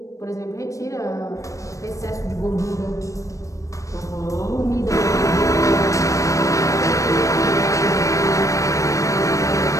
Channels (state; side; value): late; right; 0.16 ms